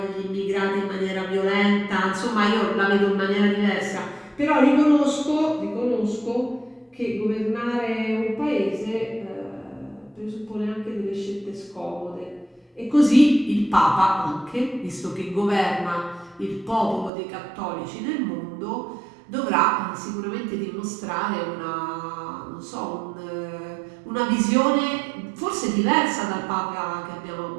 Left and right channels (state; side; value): drops out; left; at 17.1 s